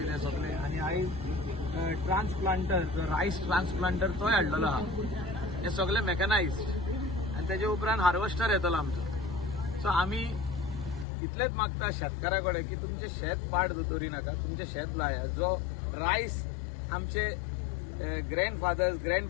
ते सगळे, आनी आयज ट्रान्सप्लांटर रायस ट्रान्सप्लांटर तोय हाडलेलो आहा. हे सगळे मेकनायज्ड आनी तेजे उपरांत हार्वेस्टर येतलो आमचो. सो आमी इतलेंच मागता शेतकारा कडेन की तुमचें शेत पाड दोतोरी नाका, तुमचें शेत लाया. जो रायस आमचे ग्रँडफादर्स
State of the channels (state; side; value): drops out; right; at 11.1 s